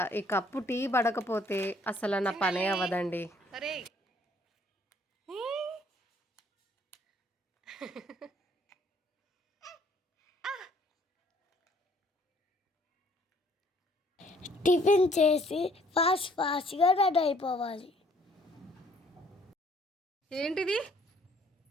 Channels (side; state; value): both; normal; correlation 0.61